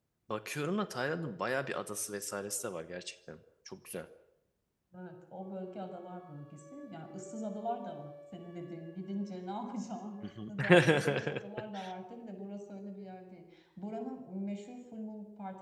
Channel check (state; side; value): identical; both; correlation 1.00